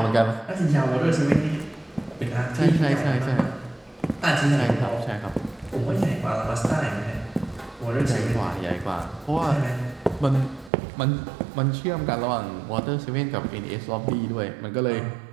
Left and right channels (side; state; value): left; drops out; at 10.7 s